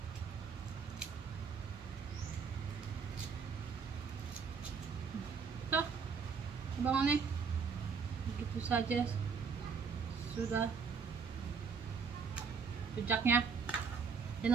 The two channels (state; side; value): quieter; left; 5.7 dB